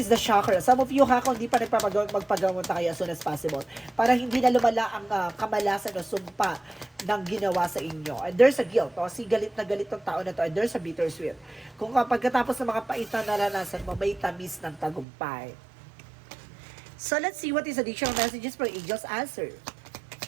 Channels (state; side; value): drops out; left; at 15.1 s